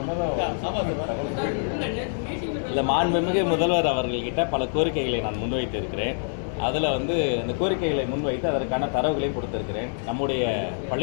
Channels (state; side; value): silent; right; digital silence